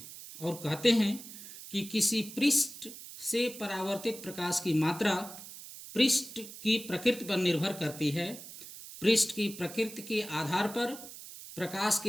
और कहते हैं कि किसी पृष्ठ से परावर्तित प्रकाश की मात्रा पृष्ठ की प्रकृति पर निर्भर करती है। पृष्ठ की प्रकृति के आधार पर प्रकाश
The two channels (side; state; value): right; noise; hiss, 14 dB below the sound